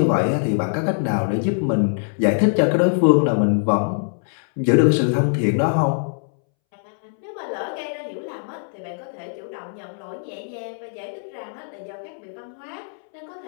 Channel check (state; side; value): silent; right; 64 dB below the other